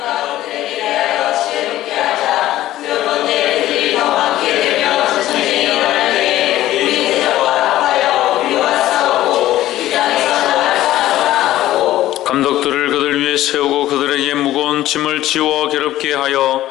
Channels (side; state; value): right; quieter; 14.5 dB